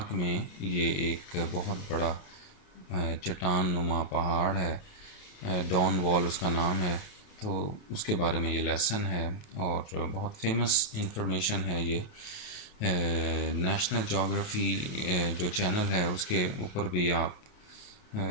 में ये एक बहुत बड़ा चट्टान नुमा पहाड़ है, डॉन वॉल उसका नाम है। तो उसके बारे में ये लेसन है और बहुत फेमस इंफॉर्मेशन है। ये नेशनल जोग्राफ़ी जो चैनल है उसके ऊपर भी आप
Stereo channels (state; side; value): late; right; 28 ms